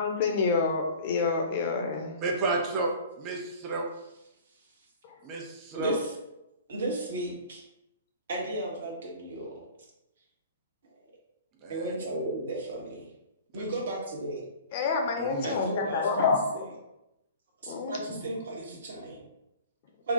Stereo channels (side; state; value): both; inverted; correlation -0.42